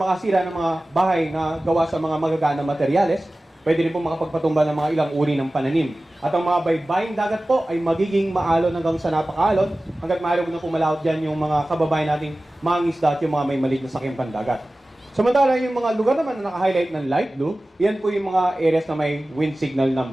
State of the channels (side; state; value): both; normal; correlation 0.97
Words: makasira ng mga bahay na gawa sa mga magaganang materyales. Pwede rin po makapagpatumba ng mga ilang uri ng pananim. At ang mga baybaying dagat po ay magiging maalon hanggang sa napakaalon hanggat maaari na pumalawat dyan yung mga kababayan nating mga isda at yung mga may maliit na sakyang pandagat. Samantala yung mga lugar naman na naka-highlight ng light blue, yan po yung mga areas na may wind signal